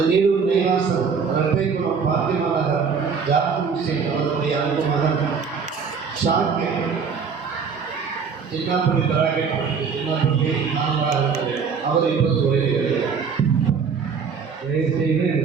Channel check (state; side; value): quieter; left; 5.8 dB